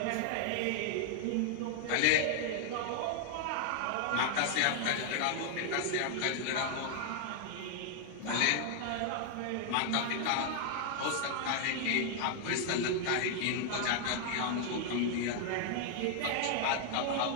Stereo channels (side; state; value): both; different; correlation 0.00